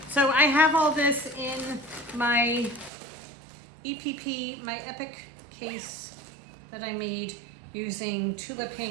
So I have all this in my EPP, my Epic case that I made using Tula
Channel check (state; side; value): drops out; left; at 2.9 s